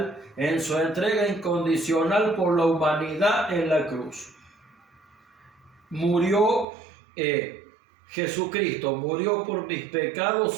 por la humanidad en la cruz. Jesucristo murió por mis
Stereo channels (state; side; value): drops out; left; at 6.7 s